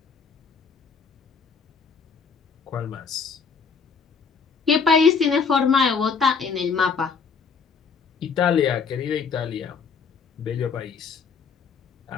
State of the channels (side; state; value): right; quieter; 5.7 dB